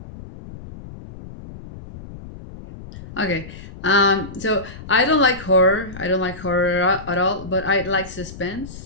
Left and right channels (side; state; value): left; noise; rumble, 14 dB below the sound